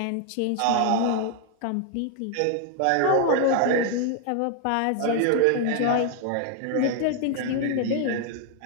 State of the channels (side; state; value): both; different; correlation 0.00